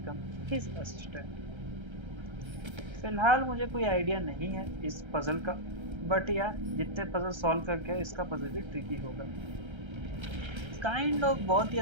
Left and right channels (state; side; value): late; left; 1.3 ms